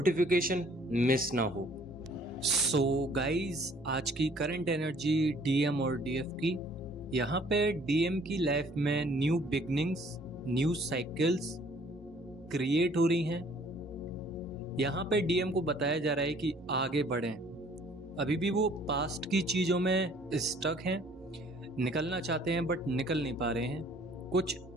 मिस ना हो। सो गाइस, आज की करंट एनर्जी डीएम और डीएफ की। यहाँ पे डीएम की लाइफ में new beginnings, new cycles create हो रही हैं। यहाँ पे डीएम को बताया जा रहा है कि आगे बढ़ें। अभी भी वो पास्ट की चीज़ों में स्टक हैं, निकलना चाहते हैं बट निकल नहीं पा रहे हैं। कुछ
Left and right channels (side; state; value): both; normal; correlation 0.58